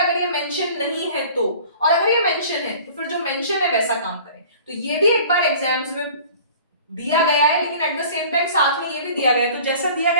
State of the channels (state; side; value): inverted; both; correlation -0.46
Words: ये मेंशन नहीं है तो, और अगर ये मेंशन है तो फिर जो मेंशन है वैसा काम करें। तो ये भी एक बार एग्जाम्स में दिया गया है, लेकिन एट द सेम टाइम साथ में ये भी दिया गया है, तो जैसा दिया